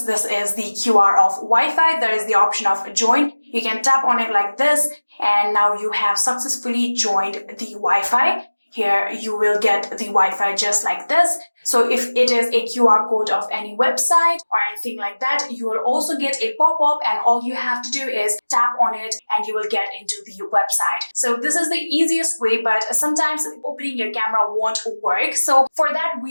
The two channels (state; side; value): inverted; both; correlation -1.00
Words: this is the QR of Wi-Fi, there is the option of join. You can tap on it like this, and now you have successfully joined the Wi-Fi. Here you will get the Wi-Fi just like this. So if it is a QR code of any website or anything like that, you will also get a pop-up, and all you have to do is tap on it and you will get into the website. So this is the easiest way, but sometimes opening your camera won't work. So for that,